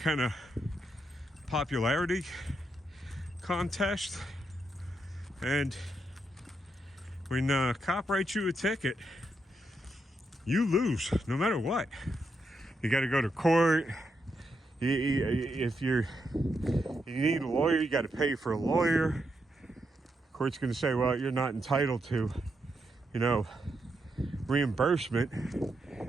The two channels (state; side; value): normal; both; correlation 0.82